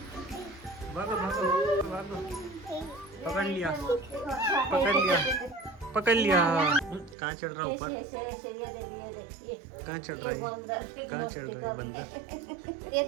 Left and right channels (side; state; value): left; drops out; at 7.2 s